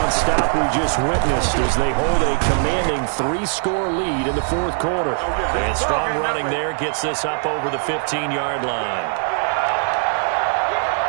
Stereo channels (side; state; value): left; silent; 63 dB below the other